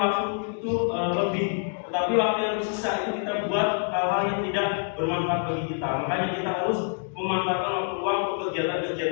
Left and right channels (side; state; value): right; silent; 58 dB below the other